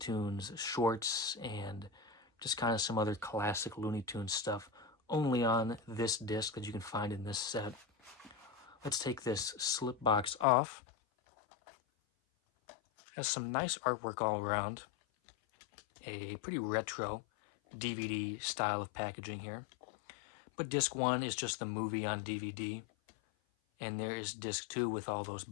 shorts and just kind of some other classic Looney Tunes stuff only on this disc that you can find in this set. Let's take this slip box off. Has some nice artwork all around. A pretty retro DVD style of packaging here. But disc 1 is just the movie on DVD. And there is disc 2 with all those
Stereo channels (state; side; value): drops out; right; at 10.5 s